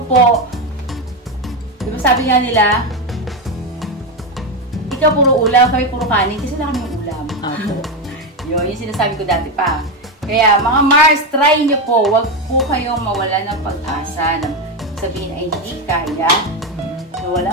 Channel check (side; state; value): both; normal; correlation 0.11